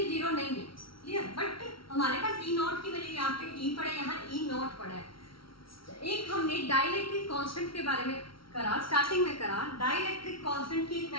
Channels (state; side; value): late; right; 0.74 ms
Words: जीरो नहीं है, क्लियर, बट हमारे पास ई नॉट की वैल्यू यहाँ पे ई पड़ा है, यहाँ ई नॉट पड़ा है। एक हमने डाइलेक्ट्रिक कांस्टेंट के बारे में करा, स्टार्टिंग में करा। डाइलेक्ट्रिक कांस्टेंट की एक